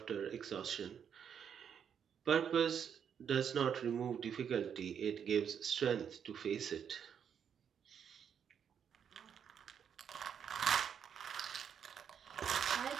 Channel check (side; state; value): left; quieter; 7.9 dB